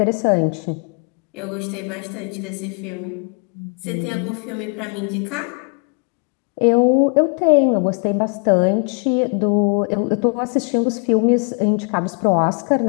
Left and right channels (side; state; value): right; quieter; 37.7 dB